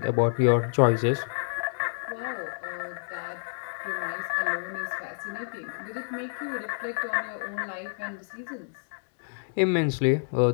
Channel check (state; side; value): silent; right; digital silence